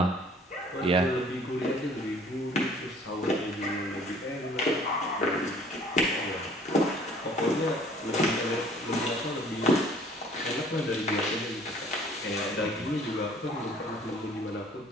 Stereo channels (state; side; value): normal; both; correlation 0.55